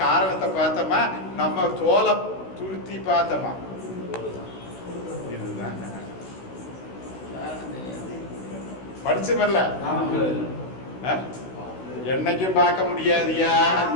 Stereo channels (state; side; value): late; right; 16 ms